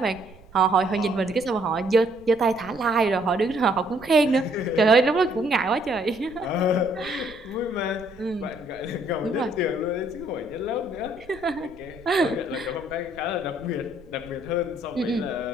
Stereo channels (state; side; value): noise; right; rumble, 22 dB below the sound